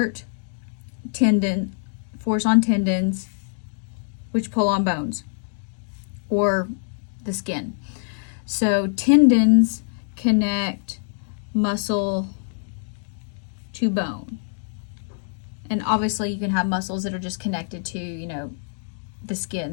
force on tendons, which pull on bones or the skin. So tendons connect muscle to bone. And obviously you can have muscles that are just connected to, the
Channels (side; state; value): right; silent; digital silence